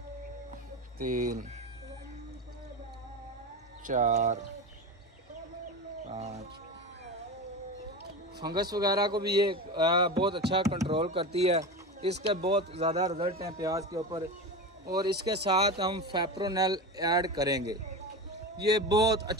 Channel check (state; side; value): normal; both; correlation 0.24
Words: 3 4 5। फंगस वगैरह को भी ये बहुत अच्छा कंट्रोल करती है। इसके बहुत ज़्यादा रिजल्ट हैं प्याज के ऊपर। और इसके साथ हम फेप्रोनेल ऐड करेंगे। ये बहुत